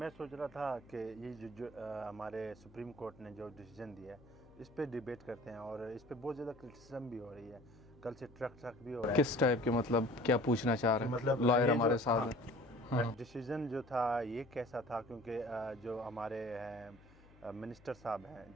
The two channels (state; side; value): noise; left; hum, 25 dB below the sound